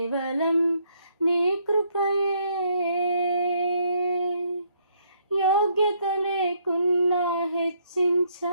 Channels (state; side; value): inverted; both; correlation -0.70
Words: నీ కృపయే. యోగ్యత లేకున్నా